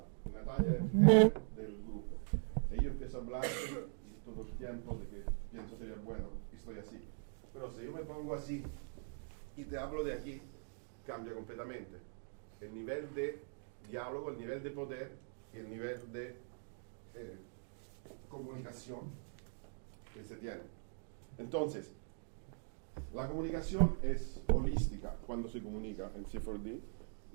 Natalia es el jefe del grupo. Si yo empiezo a hablar todo el tiempo de que pienso sería bueno, estoy así. Pero si yo me pongo así y te hablo de aquí, cambia completamente. El nivel de diálogo, el nivel de poder y el nivel de comunicación que se tiene. Entonces, la comunicación es holística cuando se comunica en C4D.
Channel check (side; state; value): left; silent; digital silence